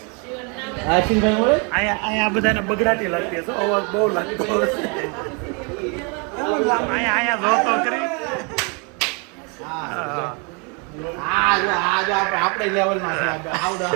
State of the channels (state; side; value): quieter; left; 33.9 dB